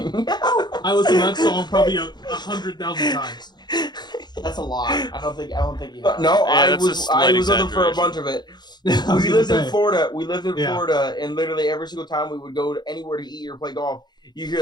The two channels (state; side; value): late; right; 0.21 ms